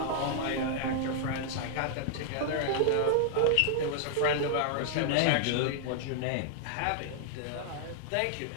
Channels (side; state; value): both; different; correlation -0.01